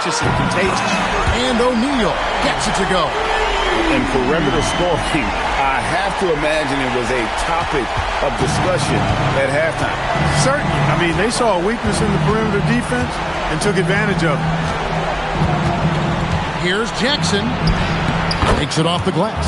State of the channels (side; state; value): both; identical; correlation 1.00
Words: and contagious. And O'Neal gets it to go. And perimeter scoring, I have to imagine it was a topic of discussion at halftime. Certainly. I mean, they saw a weakness in the perimeter defense and took advantage of it. Here's Jackson. Takes it off the